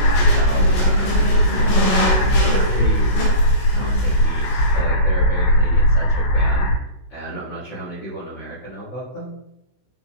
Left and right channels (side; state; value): right; late; 16 ms